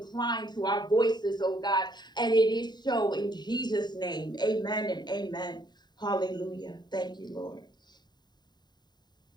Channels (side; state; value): right; late; 0.21 ms